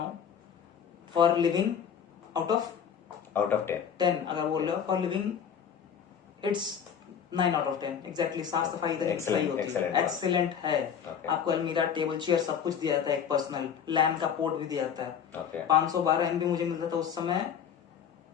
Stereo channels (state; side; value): quieter; right; 7.9 dB